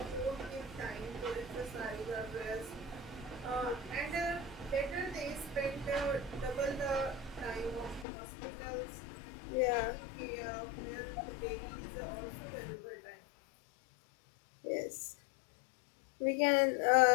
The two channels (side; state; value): right; drops out; at 8.1 s